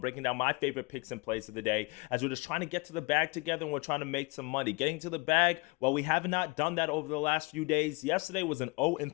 breaking down my favorite picks and plays of the day, as we're just trying to get to the bag together and we're trying to make some money. Getting to the bag, well, we have not done that over the last few days. Yesterday was an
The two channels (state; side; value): quieter; right; 27.4 dB